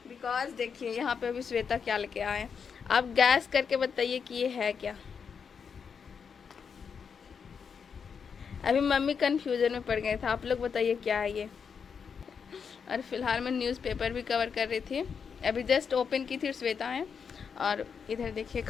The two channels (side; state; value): right; quieter; 6.4 dB